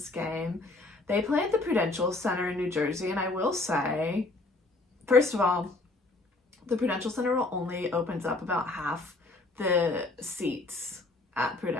game. They play at the Prudential Center in New Jersey, and I will say, first of all, the Prudential Center only opens up about half the seats at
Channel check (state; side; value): quieter; right; 3.1 dB